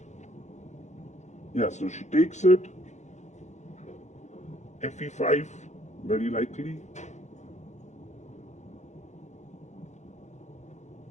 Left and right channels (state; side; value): late; right; 0.34 ms